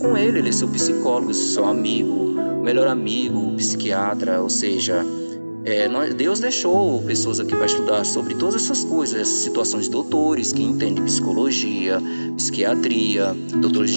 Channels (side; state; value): both; inverted; correlation -1.00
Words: Ele, Ele é seu psicólogo, seu amigo, melhor amigo, psiquiatra, ou seja, Deus deixou pessoas aqui para estudar sobre todas essas coisas, essas situações, doutores que entendem psicologia, psiquiatria, doutores